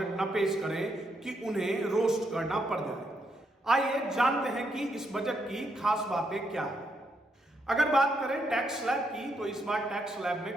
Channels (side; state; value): both; normal; correlation 0.78